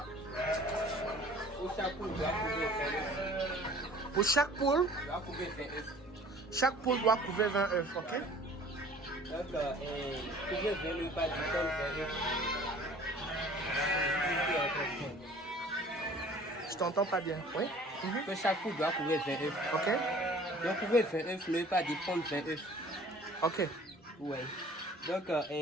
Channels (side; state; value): both; normal; correlation 0.49